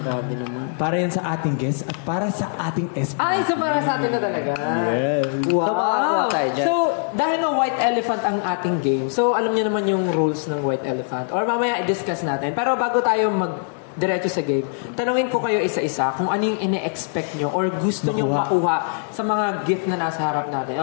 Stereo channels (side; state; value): right; silent; 64 dB below the other